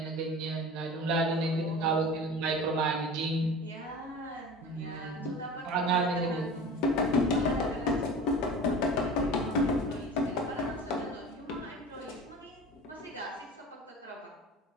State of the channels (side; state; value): both; normal; correlation 0.36